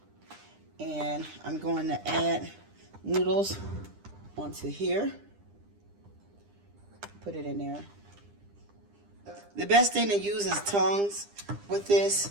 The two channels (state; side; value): late; left; 9.9 ms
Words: And I'm going to add noodles onto here. Put it in there. The best thing to use is tongs with